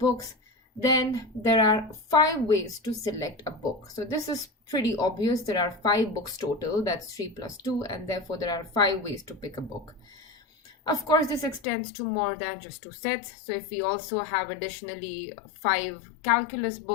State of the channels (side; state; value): right; drops out; at 11.6 s